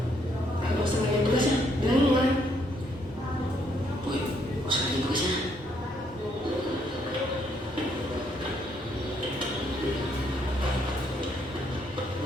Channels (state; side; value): normal; both; correlation 0.71